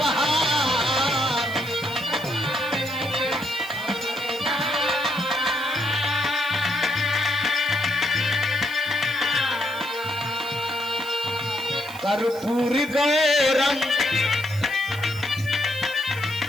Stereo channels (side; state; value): right; noise; hiss, 18 dB below the sound